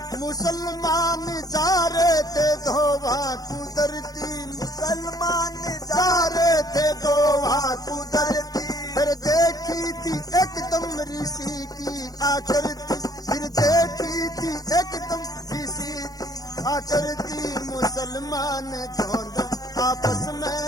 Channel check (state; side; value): late; right; 0.18 ms